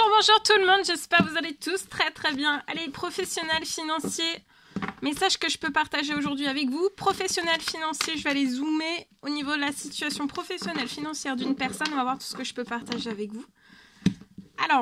bonjour tout le monde, j'espère que vous allez tous très très bien. Allez, professionnels financiers, message que je peux partager aujourd'hui avec vous. Professionnels financiers, je vais aller zoomer au niveau de la situation professionnelle financière d'une personne. On va voir tout ce que je peux partager avec vous.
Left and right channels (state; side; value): identical; both; correlation 1.00